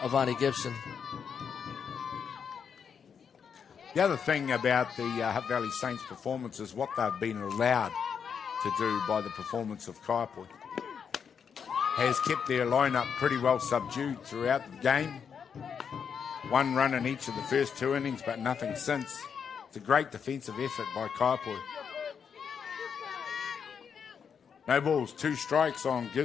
Vonnie Gibson. The other thing about the Hutt Valley Saints performance is what they've been allowed to do by the performance of Kaiapoi. Has kept their lineup pretty well subdued throughout the game. 1 run in each of the first 2 innings, but nothing since. It's a great defensive effort by Kaiapoi. No balls, 2 strikes on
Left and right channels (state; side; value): quieter; right; 7.0 dB